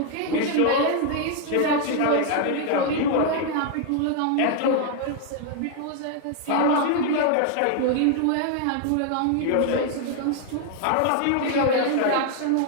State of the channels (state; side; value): different; both; correlation 0.00